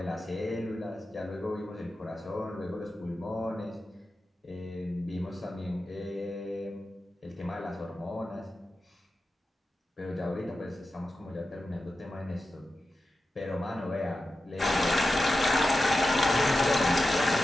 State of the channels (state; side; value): normal; both; correlation 0.92